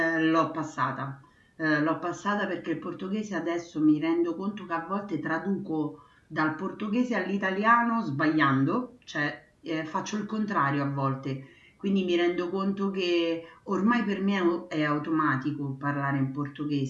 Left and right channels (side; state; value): both; identical; correlation 1.00